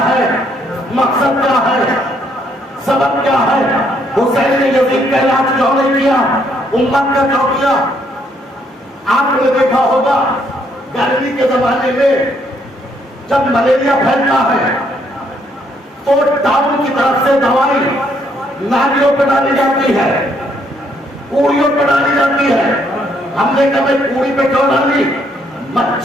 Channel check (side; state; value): both; normal; correlation 0.70